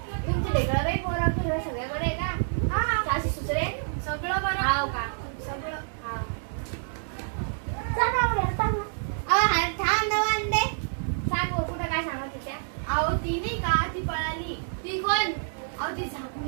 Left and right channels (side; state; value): left; silent; 60 dB below the other